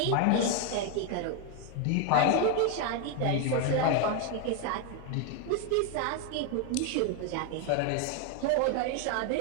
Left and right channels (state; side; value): different; both; correlation 0.01